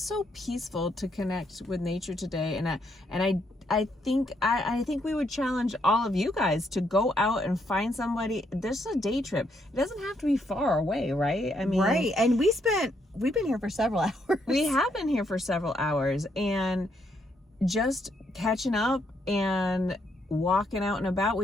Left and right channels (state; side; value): normal; both; correlation 0.75